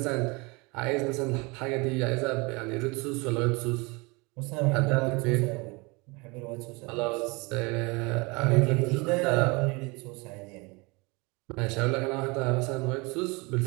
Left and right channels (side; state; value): left; quieter; 26.9 dB